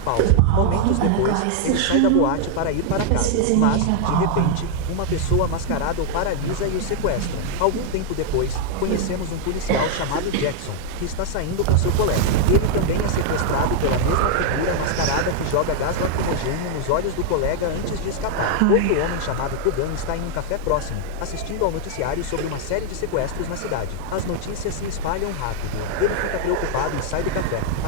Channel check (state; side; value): different; both; correlation 0.00